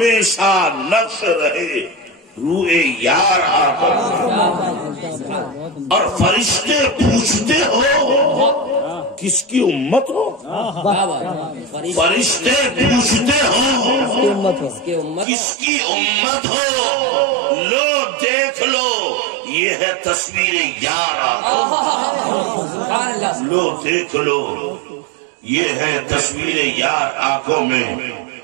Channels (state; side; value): drops out; left; at 15.2 s